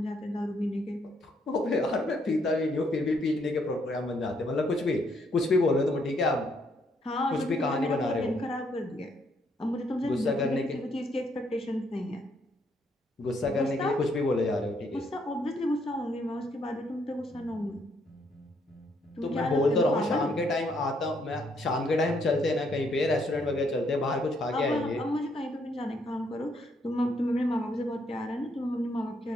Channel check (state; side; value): normal; both; correlation 0.72